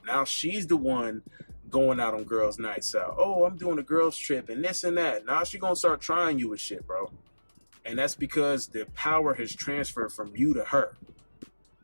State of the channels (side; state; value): both; inverted; correlation -1.00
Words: Now she's the one going out on girls' nights out. Oh, I'm doing a girls' trip and this and that. Now she's going to start trying you with shit, bro. And that's because the power has transferred from you to her.